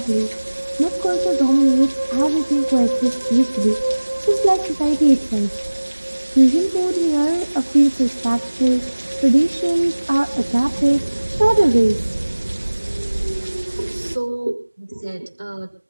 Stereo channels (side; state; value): both; inverted; correlation -1.00